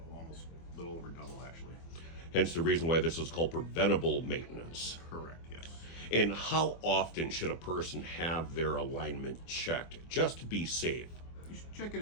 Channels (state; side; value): late; right; 24 ms